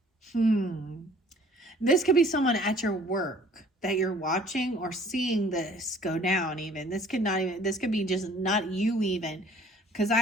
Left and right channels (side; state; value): both; normal; correlation 0.54